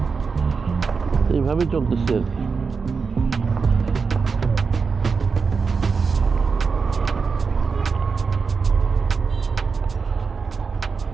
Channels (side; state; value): left; quieter; 5.1 dB